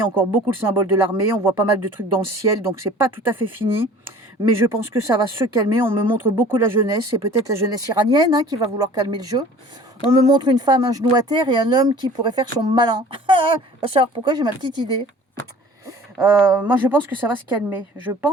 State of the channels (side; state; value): both; normal; correlation 0.47